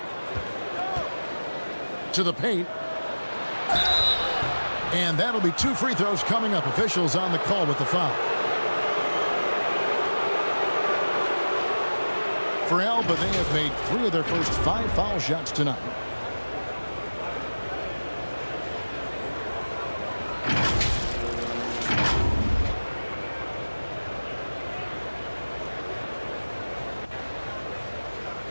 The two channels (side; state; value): both; inverted; correlation -1.00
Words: To the paint. And that'll be 2 free throws coming up. Officials on the call with the foul. For Alba, they have made 3 of their first 5 foul shots tonight.